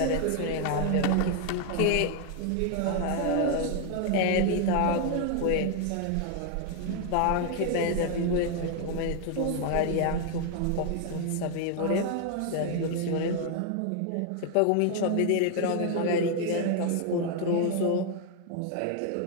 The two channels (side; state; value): both; different; correlation 0.00